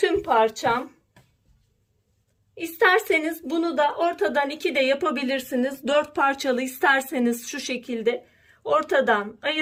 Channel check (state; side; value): identical; both; correlation 1.00